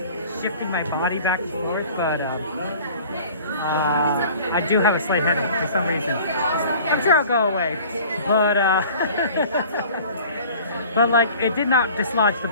shifting my body back and forth, but I do have a slight headache for some reason. I'm sure I'll go away, but but like it did not dislodge the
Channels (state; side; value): inverted; both; correlation -0.46